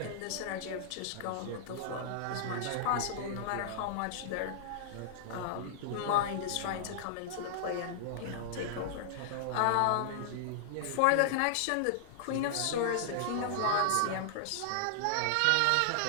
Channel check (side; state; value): both; different; correlation -0.01